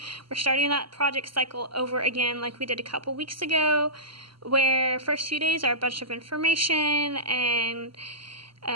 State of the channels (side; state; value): left; late; 0.74 ms